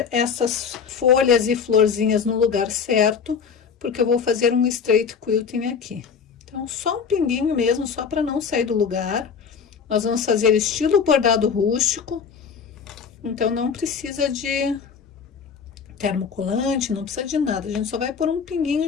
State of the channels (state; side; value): quieter; right; 6.3 dB